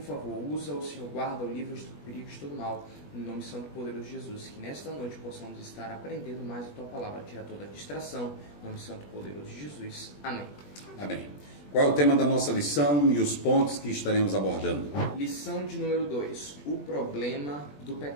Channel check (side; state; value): right; late; 20 ms